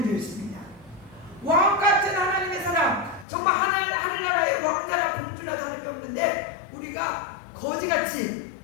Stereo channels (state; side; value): drops out; right; at 3.2 s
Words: 되어 있습니다. 왕 같은 하나님의 사람, 정말 하늘나라의 왕자나 공주나 다름이 없는데 우리가 거지같이